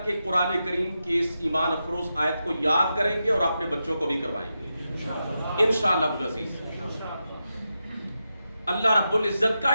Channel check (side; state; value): both; inverted; correlation -0.88